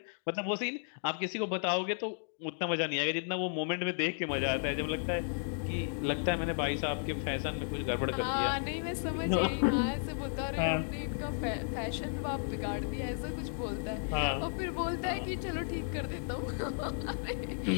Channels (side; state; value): right; silent; digital silence